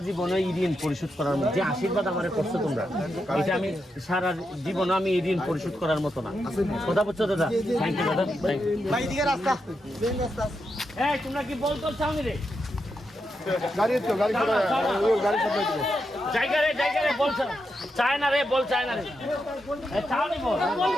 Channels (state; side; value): normal; both; correlation 0.85